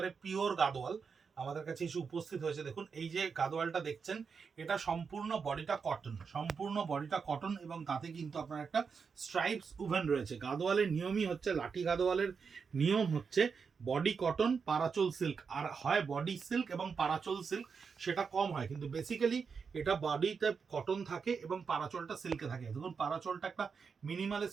পিওর গাদোয়াল আমাদের কাছে এসে উপস্থিত হয়েছে। দেখুন এই যে গাদোয়ালটা দেখছেন, এটা সম্পূর্ণ বডিটা কটন, সম্পূর্ণ বডিটা কটন এবং তাতে কিন্তু আপনার একটা স্ট্রাইপস উভেন রয়েছে। গাদোয়ালের নিয়মই হচ্ছে, লাঠি গাদোয়ালের নিয়ম হচ্ছে বডি কটন, পারাচল সিল্ক, আর হয় বডি সিল্ক এবং পারাচল সিল্ক, সেটা কম হয়, কিন্তু বেসিক্যালি এটা বডিতে কটন থাকে এবং পারাচলটা সিল্কে থাকে। দেখুন পারাচলটা একটা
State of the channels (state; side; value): quieter; left; 5.7 dB